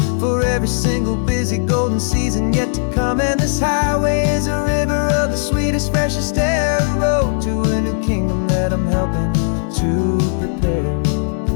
for every single busy golden season yet to come. And this highway is a river of the sweetest, freshest air, a road to a new kingdom that I'm helping to prepare.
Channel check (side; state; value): right; silent; digital silence